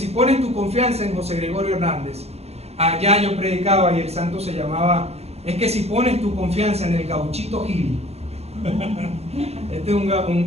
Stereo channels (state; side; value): late; left; 0.30 ms